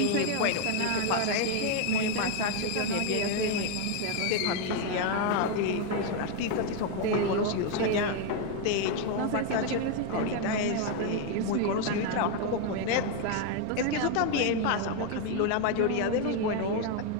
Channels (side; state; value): both; different; correlation 0.01